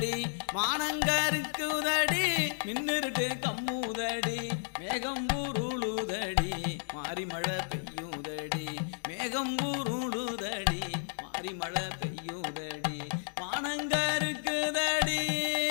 மானங்கருக்குதடி மின்னிருட்டு கம்முதடி மேகம் உருளுதடி மாறி மழை பெய்யுதடி மேகம் உருளுதடி மாறி மழை பெய்யுதடி மானங்கருக்குதடி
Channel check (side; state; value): right; silent; digital silence